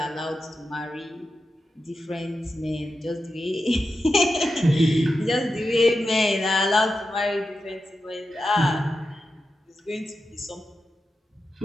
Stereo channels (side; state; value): both; normal; correlation 0.90